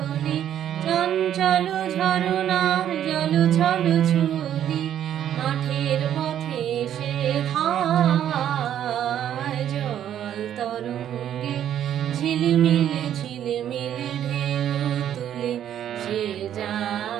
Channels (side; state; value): left; quieter; 10.5 dB